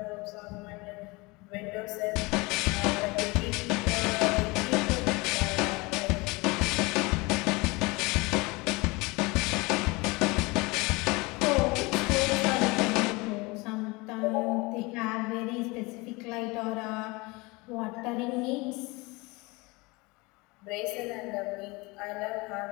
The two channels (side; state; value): right; quieter; 24.7 dB